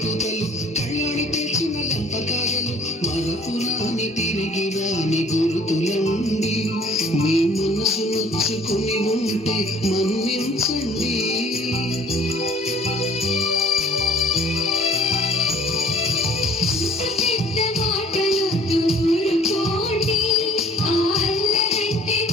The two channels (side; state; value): both; normal; correlation 0.53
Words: కూతలు కళ్యాణి పేర్చిన లంపకాయలు మరపురాని తిరిగి రాని గురుతులండి మీ మనసు నొచ్చుకుని ఉంటే మన్నించండి